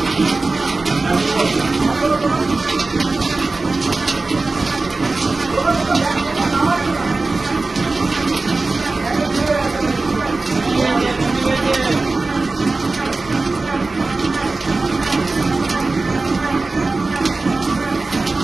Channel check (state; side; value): quieter; left; 3.5 dB